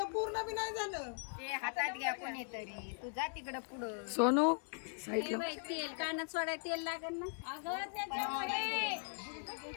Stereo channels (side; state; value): right; silent; 51 dB below the other